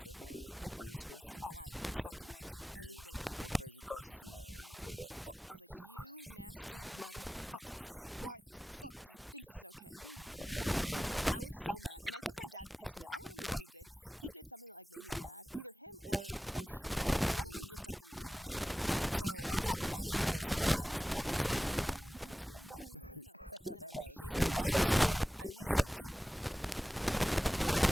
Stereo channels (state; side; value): normal; both; correlation 0.96